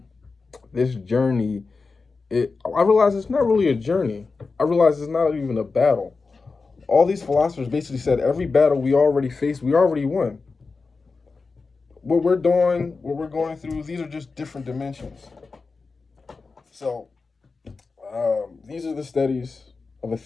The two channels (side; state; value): right; quieter; 4.3 dB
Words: this journey, I realize it's not really a journey. I realize it's not even a battle. All these philosophers basically said every battle we already faced, we already won. What we're doing, what we're going through, these are just different dimensions. So, these are the studies of a